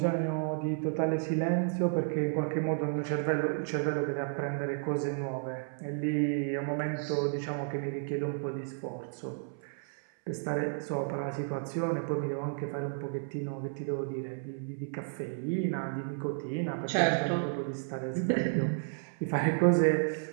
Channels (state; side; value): silent; left; 56 dB below the other